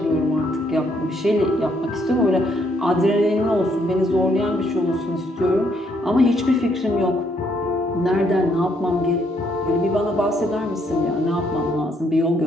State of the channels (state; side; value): normal; both; correlation 0.71